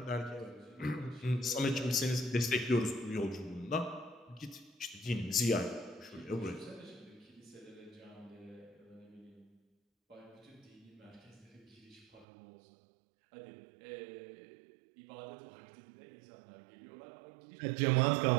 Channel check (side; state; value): left; drops out; at 12.2 s